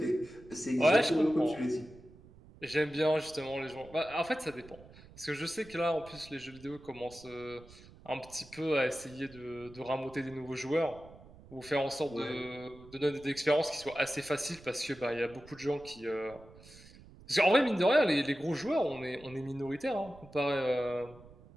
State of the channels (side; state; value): right; noise; rumble, 21 dB below the sound